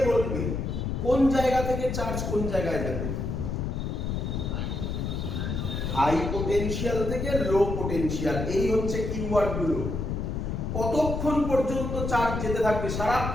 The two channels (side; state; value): left; noise; rumble, 2 dB below the sound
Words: বলবে কোন জায়গা থেকে চার্জ কোন জায়গায় যাবে? হাই পোটেনশিয়াল থেকে লো পোটেনশিয়াল, এই হচ্ছে কিওয়ার্ড গুলো। কতক্ষণ পর্যন্ত চার্জ যেতে থাকবে?